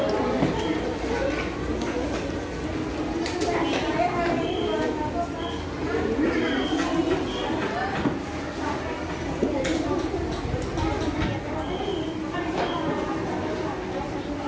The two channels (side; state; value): both; identical; correlation 1.00